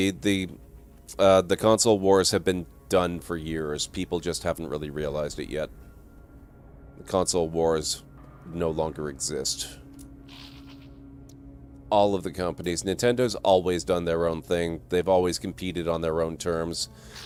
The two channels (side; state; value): both; identical; correlation 1.00